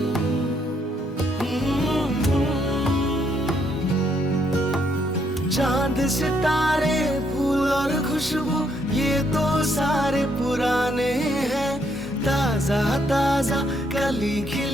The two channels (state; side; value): normal; both; correlation 0.72